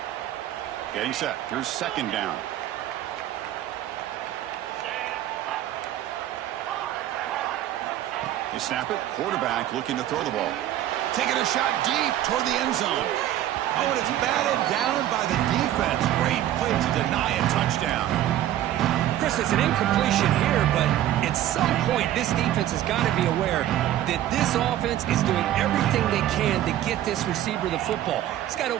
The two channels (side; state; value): left; quieter; 12.7 dB